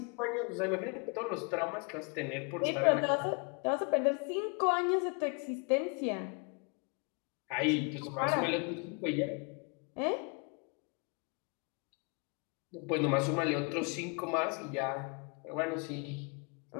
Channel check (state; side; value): quieter; right; 33.8 dB